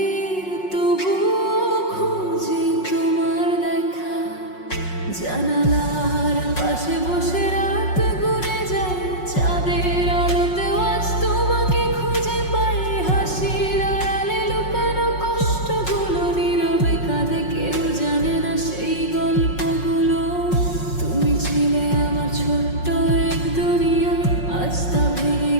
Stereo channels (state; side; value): late; right; 5.5 ms